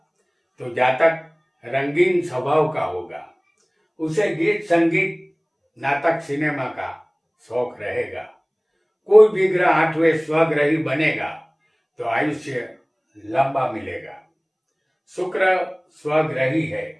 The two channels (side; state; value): both; identical; correlation 1.00